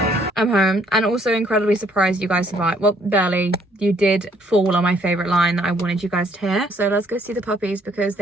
I'm home, and also incredibly surprised you guys survived. Well, barely. You did fall on my favourite line that I wanted you guys to hear. So let's go see the puppies, because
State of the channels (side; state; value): both; normal; correlation 0.65